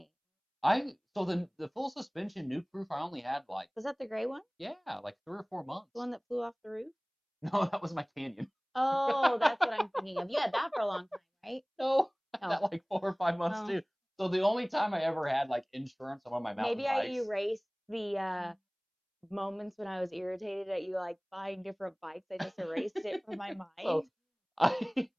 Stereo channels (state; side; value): identical; both; correlation 1.00